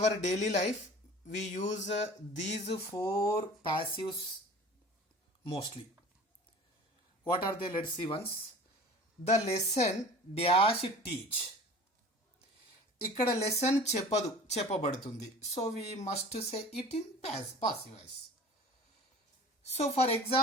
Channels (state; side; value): normal; both; correlation 0.42